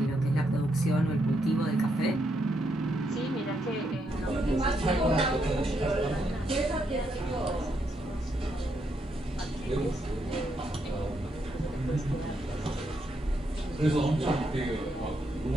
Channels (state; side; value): normal; both; correlation 0.78